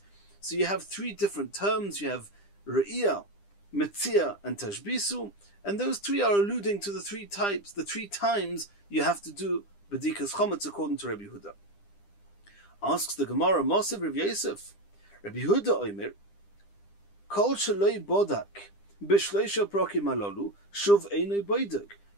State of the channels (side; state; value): right; late; 10 ms